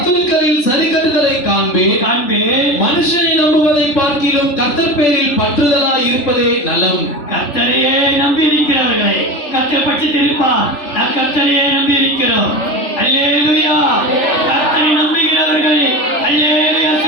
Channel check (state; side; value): late; right; 3.4 ms